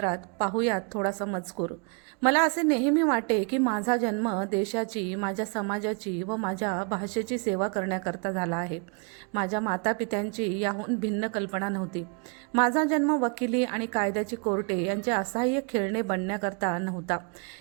पाहूयात थोडासा मजकूर. मला असे नेहमी वाटे की माझा जन्म देशाची, माझ्या समाजाची व माझ्या भाषेची सेवा करण्याकरता झाला आहे. माझ्या मातापित्यांची याहून भिन्न कल्पना नव्हती. माझा जन्म वकिली आणि कायद्याची कोर्टे यांचे असहाय्य खेळणे बनण्याकरता नव्हता.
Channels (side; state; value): left; quieter; 36.8 dB